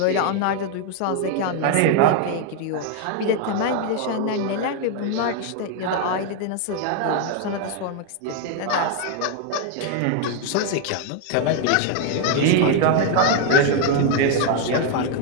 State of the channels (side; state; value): both; different; correlation 0.01